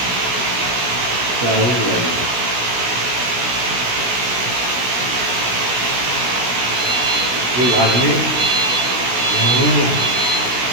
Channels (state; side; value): late; left; 16 ms